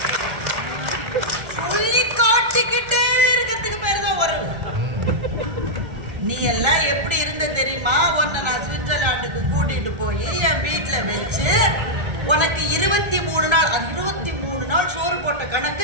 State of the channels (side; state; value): left; late; 1.3 ms